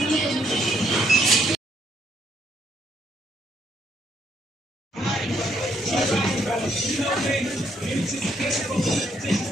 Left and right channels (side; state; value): both; normal; correlation 0.71